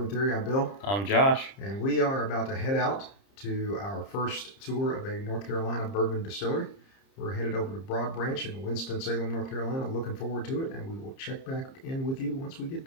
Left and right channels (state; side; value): late; right; 30 ms